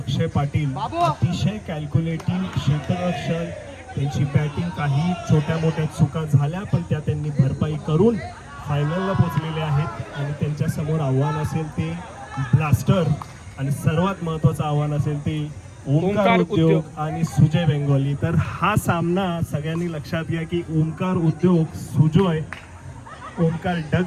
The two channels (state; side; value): identical; both; correlation 1.00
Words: पाटील अतिशय कॅल्क्युलेटिव्ह क्षेत्ररक्षण, त्यांची बॅटिंग काही छोट्या मोठ्या चुका झाल्या पण त्या त्यांनी भरपाई करून फायनलला पोहोचलेले आहेत. आणि त्यांच्या समोर आव्हान असेल ते ब्लास्टर आणि सर्वात महत्त्वाचं आव्हान असेल ते ओमकार उद्योग आणि सुजय बेंगोली. तर हा सामना सगळ्यांनी लक्षात घ्या की ओमकार उद्योग, सुजय, ओमकार